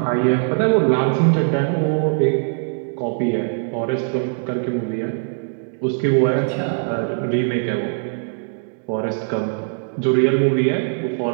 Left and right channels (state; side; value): silent; left; digital silence